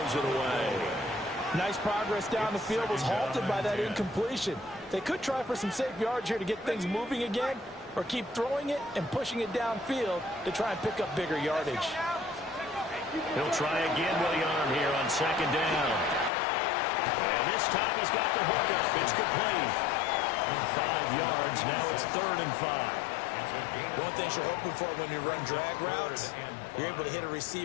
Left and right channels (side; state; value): right; drops out; at 16.3 s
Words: it away. Nice progress down the field, was halted by that incompletion. They could try for some safe yards here to get things moving again, or keep throwing it and pushing it downfield to try and pick up bigger yardage. He'll try again with the arm here on second down. And this time he's got the hook up. It's complete. 5 yards. Now it's 3rd and 5. One thing you're hoping for when you run drag routes, you're able to hit a